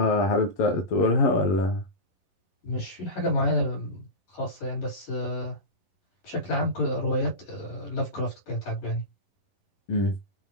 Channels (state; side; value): late; right; 11 ms